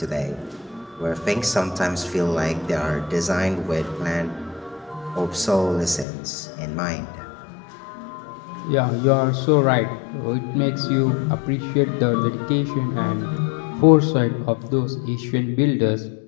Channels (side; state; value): right; drops out; at 6.1 s